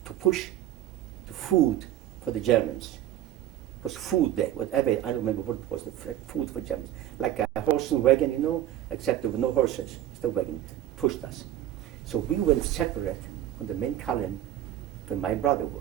to push the food for the Germans. It was food there, whatever, I don't remember what it was, the food for Germans. Like a horse and wagon, you know, except there were no horses, just a wagon, pushed us. So we went separate from the main column where my brother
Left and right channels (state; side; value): quieter; left; 12.7 dB